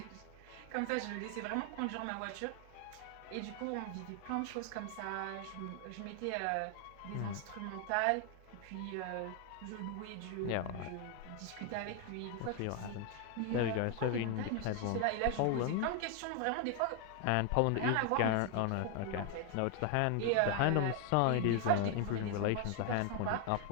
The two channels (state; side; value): different; both; correlation 0.01